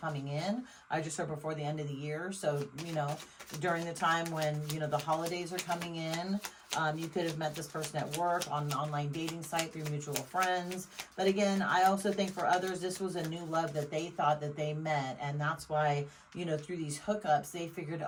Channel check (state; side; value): identical; both; correlation 1.00